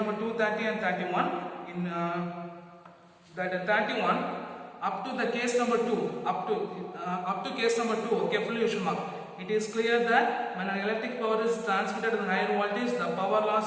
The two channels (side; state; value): both; identical; correlation 1.00